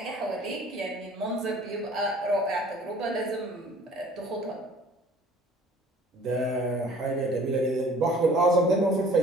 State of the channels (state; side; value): normal; both; correlation 0.50